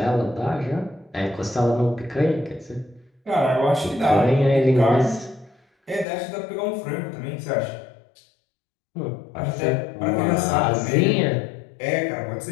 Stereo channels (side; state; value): right; drops out; at 6.1 s